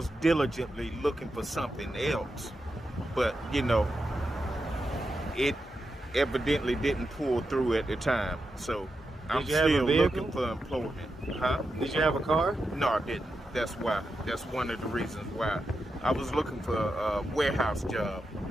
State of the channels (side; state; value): both; normal; correlation 0.88